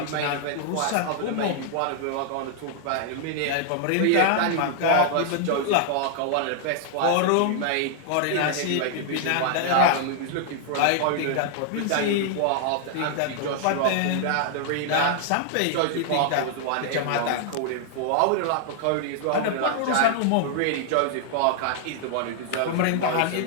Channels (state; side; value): different; both; correlation 0.00